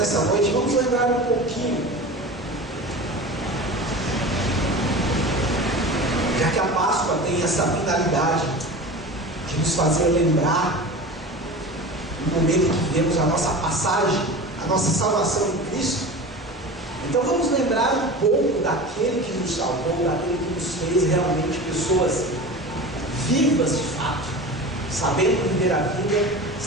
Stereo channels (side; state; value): both; normal; correlation 0.33